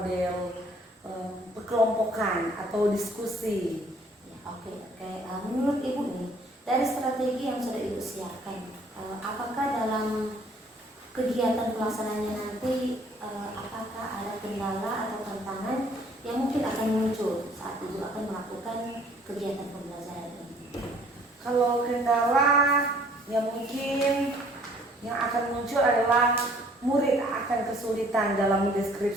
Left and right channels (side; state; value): both; normal; correlation 0.58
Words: perkelompokan atau diskusi. Ya, oke. Menurut Ibu nih, dari strategi yang sudah Ibu siapkan, apakah dalam kegiatan pelaksanaannya nanti apakah ada kendala atau tantangan yang mungkin akan muncul saat Ibu akan melakukan kegiatan pembelajaran ini? Kalau kendala yang mungkin yang akan muncul adalah murid akan kesulitan dalam